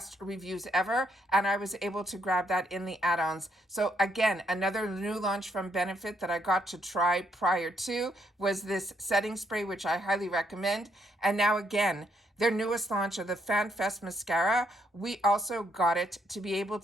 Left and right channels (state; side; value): normal; both; correlation 0.74